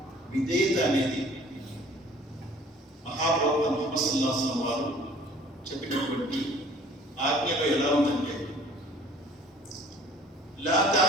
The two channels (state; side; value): normal; both; correlation 0.51